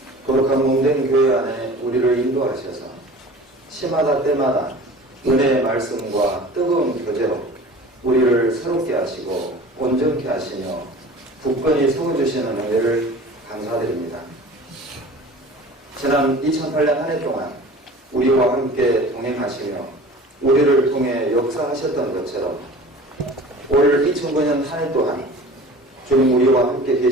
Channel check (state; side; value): normal; both; correlation 0.42